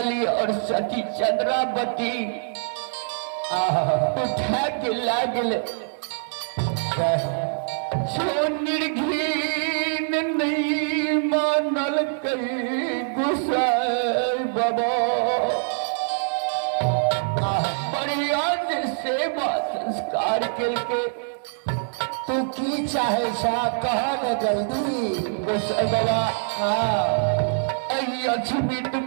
और सती चंद्रावती उठा के लागल जो निर्घीन नहीं मानल कई गोसाई बाबा बढ़िया से सेवा संस्कार करके तू की चाहे सा कहा न जल्दी गोसाई बाबा हाँ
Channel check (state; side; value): silent; left; digital silence